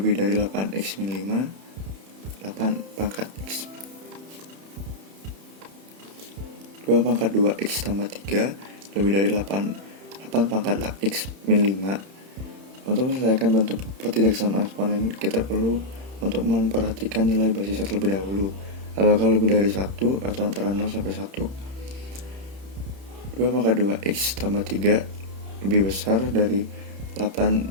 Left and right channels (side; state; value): left; late; 31 ms